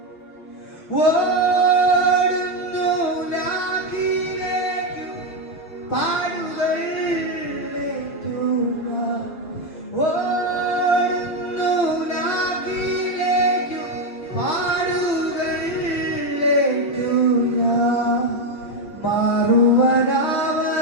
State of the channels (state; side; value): late; right; 6.5 ms